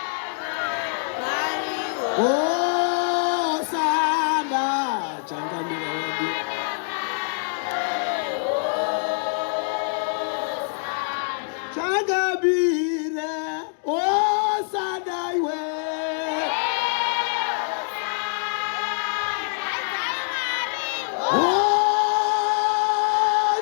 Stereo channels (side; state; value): right; silent; digital silence